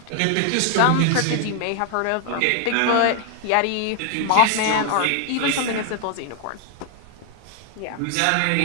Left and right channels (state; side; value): different; both; correlation 0.00